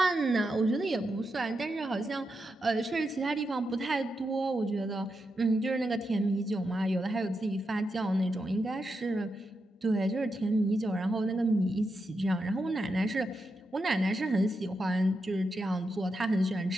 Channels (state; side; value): normal; both; correlation 0.86